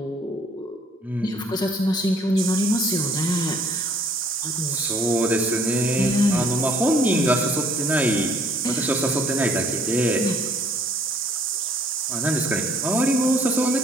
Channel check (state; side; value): normal; both; correlation 0.60